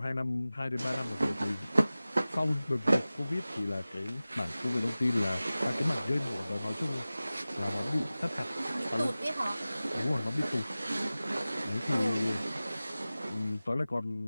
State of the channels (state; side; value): inverted; both; correlation -0.97